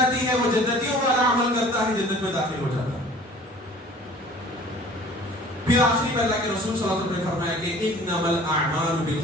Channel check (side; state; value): both; normal; correlation 0.48